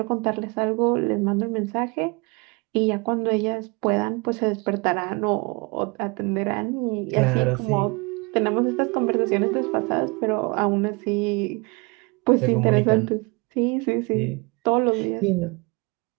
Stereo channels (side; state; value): left; quieter; 28.8 dB